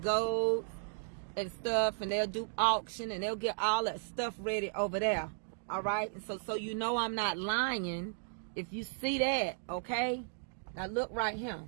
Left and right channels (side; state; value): left; silent; digital silence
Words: and stuff, and they'll do auction and they'll get all that stuff ready over there. All right? And so you know I'm not lying if you see that, okay? Now look right